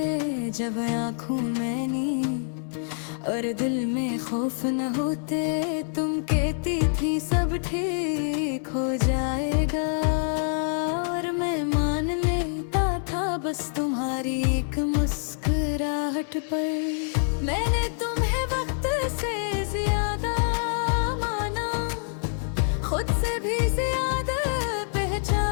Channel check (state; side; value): silent; right; digital silence